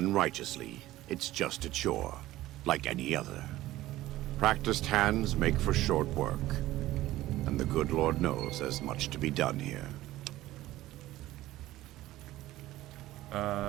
righteously, it's just a chore, like any other. Practiced hands make for short work, and the good Lord knows there's much to be done here.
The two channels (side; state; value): left; quieter; 15.9 dB